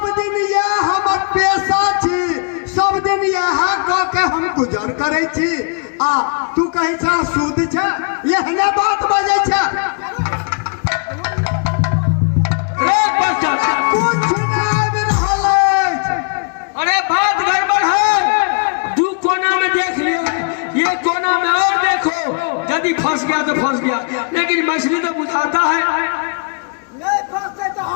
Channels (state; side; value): quieter; right; 39.3 dB